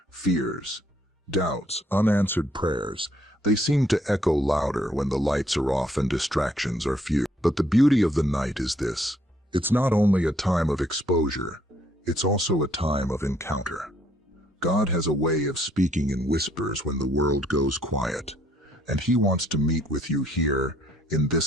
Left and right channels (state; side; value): normal; both; correlation 0.67